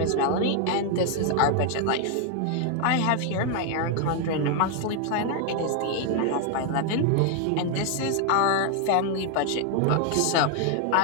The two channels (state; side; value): different; both; correlation 0.00